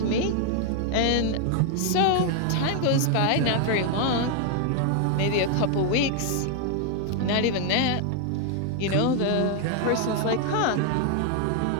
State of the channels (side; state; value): both; different; correlation 0.00